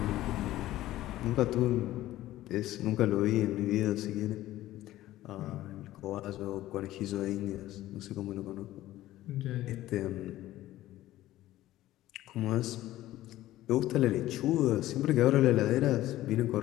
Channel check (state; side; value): quieter; right; 15.2 dB